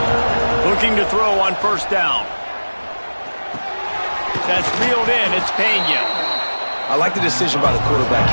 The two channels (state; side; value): inverted; both; correlation -1.00